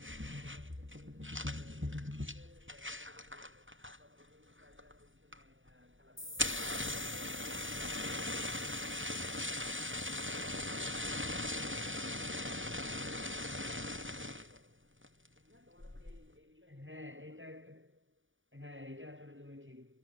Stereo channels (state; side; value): late; left; 0.57 ms